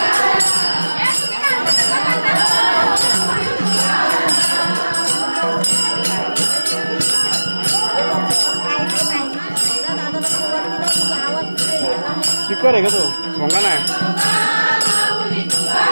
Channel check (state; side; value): inverted; both; correlation -1.00